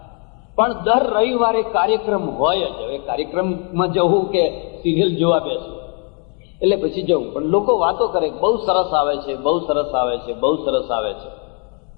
પણ દર રવિવારે કાર્યક્રમ હોય જ. હવે કાર્યક્રમમાં જવું કે સિરિયલ જોવા બેસવું એટલે પછી જવું. પણ લોકો વાતો કરે, બહુ સરસ આવે છે, બહુ સરસ આવે છે, બહુ સરસ આવે છે.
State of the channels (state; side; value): quieter; right; 38.8 dB